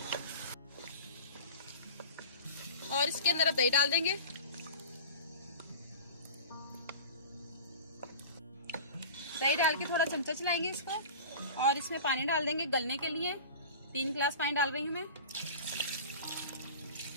और इसके अंदर अब दही डाल देंगे। दही डाल के थोड़ा चमचा चलाएंगे इसको, और इसमें पानी डाल देंगे गलने के लिए। 3 गिलास पानी डाल रही हूँ मैं।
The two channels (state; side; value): inverted; both; correlation -0.36